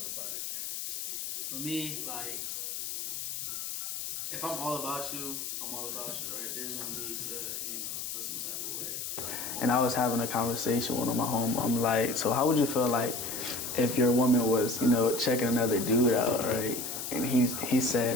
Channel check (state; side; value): noise; left; hiss, 5 dB below the sound